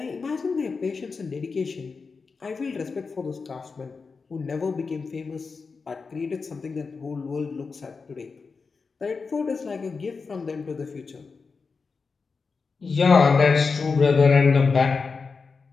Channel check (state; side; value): quieter; right; 4.7 dB